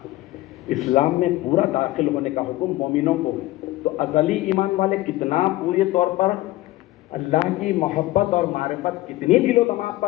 اسلام میں پورا داخل ہونے کا حکم مومنوں کو، تو ازلی ایمان والے کتنا پورے طور پر اللہ کی محبت اور معرفت کتنی دل و دماغ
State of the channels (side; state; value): right; quieter; 17.6 dB